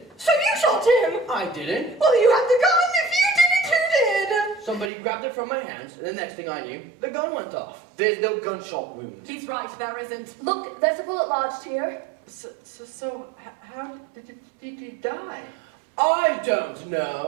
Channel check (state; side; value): drops out; left; at 4.9 s